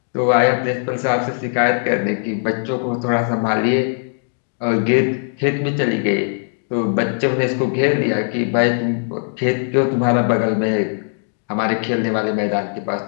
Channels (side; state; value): right; silent; digital silence